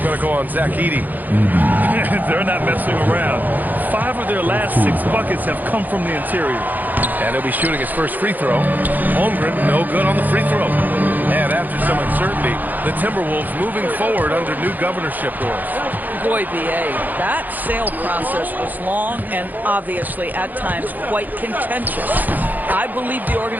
to go on Zach Edey. They're not messing around. 5 of their last 6 buckets have come from the interior. And he'll be shooting his first free throw. Holmgren, no good on the free throw. And after some uncertainty, the Timberwolves moving forward under new governorship rules. Boy, B.A., that sale process was long and obviously at times quite contentious. I believe the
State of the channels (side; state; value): left; late; 0.084 ms